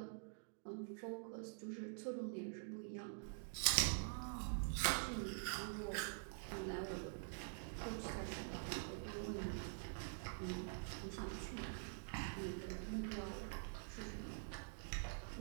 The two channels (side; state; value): left; silent; digital silence